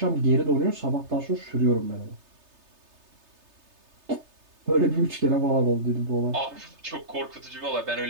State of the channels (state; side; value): late; left; 3.3 ms